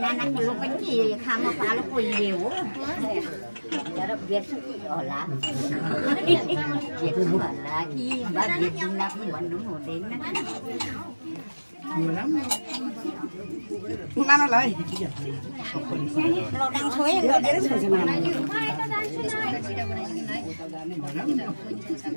लो पनि खामा पालो कोही हो तर बेर्छु होला बेर्छु होला कि बा बेर्छुला पनि भन्नु हुँदैन नानालाई लडाङ छोए गरेर छोड्छ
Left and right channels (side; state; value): both; inverted; correlation -1.00